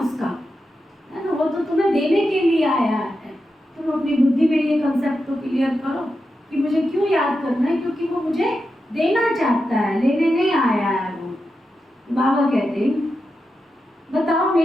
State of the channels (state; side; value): normal; both; correlation 0.89